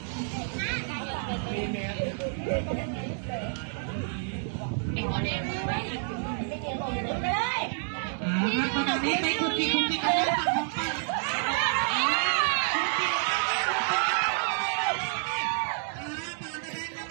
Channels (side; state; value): left; silent; 59 dB below the other